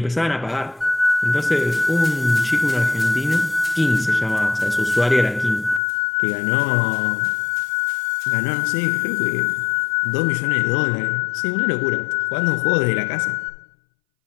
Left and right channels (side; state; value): right; drops out; at 5.8 s